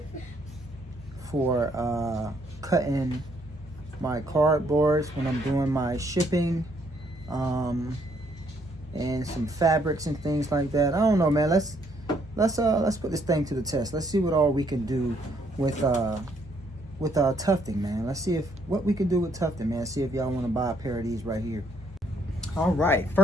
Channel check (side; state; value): both; normal; correlation 0.69